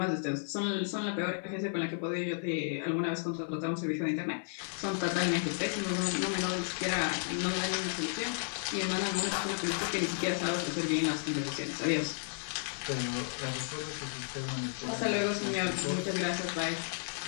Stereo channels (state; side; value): silent; right; 56 dB below the other